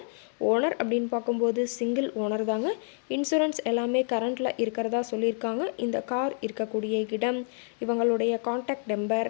ஓனர் அப்படின்னு பார்க்கும்போது சிங்கிள் ஓனர் தாங்க. இன்சூரன்ஸ் எல்லாமே கரண்ட்டில் இருக்கிறதா சொல்லியிருக்காங்க. இந்த கார் இருக்கக்கூடிய இடம், இவங்களுடைய காண்டாக்ட் நம்பர்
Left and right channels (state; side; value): silent; right; 57 dB below the other